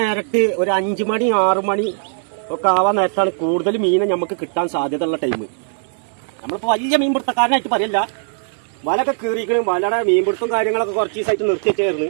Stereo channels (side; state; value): left; silent; digital silence